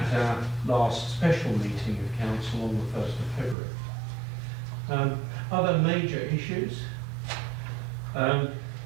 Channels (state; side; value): drops out; left; at 3.6 s